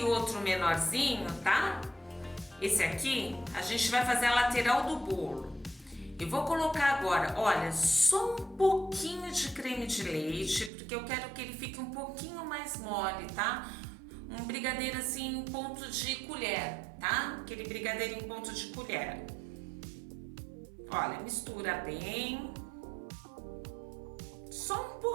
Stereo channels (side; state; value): left; drops out; at 10.7 s